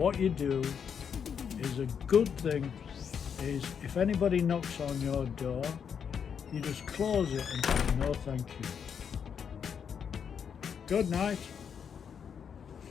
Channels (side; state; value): right; quieter; 7.3 dB